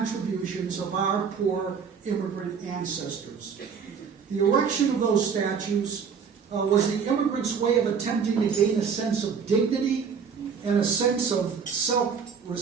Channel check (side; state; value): left; quieter; 6.4 dB